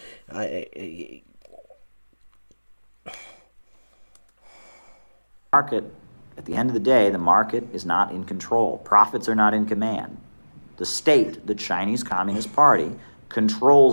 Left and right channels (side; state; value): both; inverted; correlation -1.00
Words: Market, at the end of the day, the market is not in control. Profits are not in command. The state, the Chinese Communist Party,